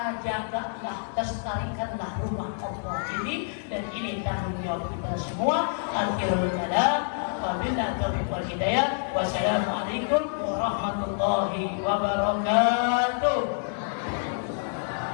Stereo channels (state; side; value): silent; right; digital silence